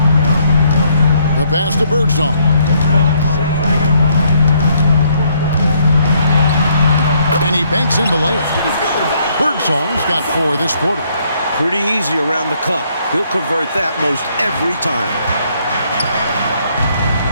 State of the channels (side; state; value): both; inverted; correlation -0.69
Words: The pass to Birdsong. And he banks in the layup. Birdsong's got 4 this quarter. Pretty easy around the cup. He'll convert that most every time.